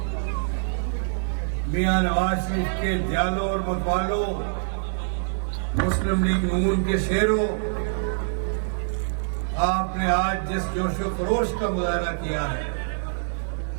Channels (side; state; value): left; silent; 62 dB below the other